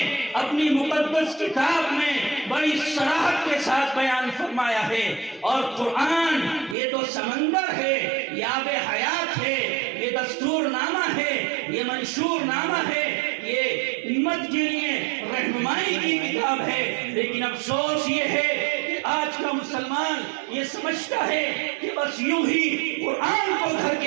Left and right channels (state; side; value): drops out; left; at 6.8 s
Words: اپنی مقدس کتاب میں بڑی صراحت کے ساتھ بیان فرمایا ہے، اور قرآن یہ تو سمندر ہے، یہ آب حیات ہے، یہ دستور نامہ ہے، یہ منشور نامہ ہے، یہ امت کے لیے رہنمائی کی کتاب ہے۔ لیکن افسوس یہ ہے کہ آج کا مسلمان یہ سمجھتا ہے کہ بس یوں ہی قرآن کو گھر